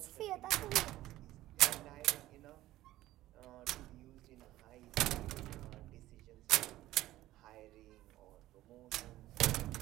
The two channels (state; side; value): quieter; left; 15.5 dB